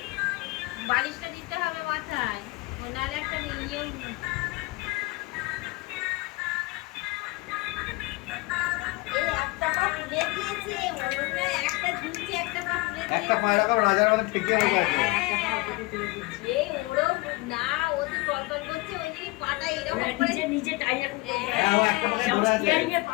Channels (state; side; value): quieter; right; 23.5 dB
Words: বালিশটা দিতে হবে মাথায়, নাহলে একটা ইয়ে। এই একটা পা তুলে দিয়েছে, মনে হয় একটা ঝুলছে, একটা পা তুলে দিয়েছে। একটা পা এরকম রাজার মতো ঠেকিয়ে বসে আছে। এই ওরও না, ও তো টলটল করছে, ওই জন্য পাটা এরকম করে নিচে টাইট এখন হ্যাঁ, ও একটা পায়ে ধরে আছে। স্টিয়ারিং এর